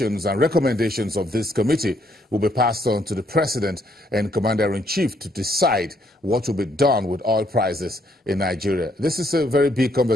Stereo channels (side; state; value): both; normal; correlation 0.71